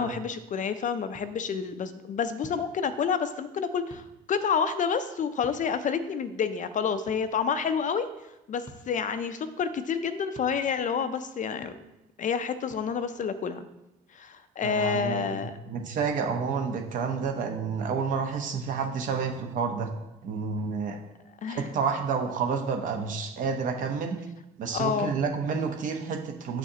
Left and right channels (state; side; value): normal; both; correlation 0.20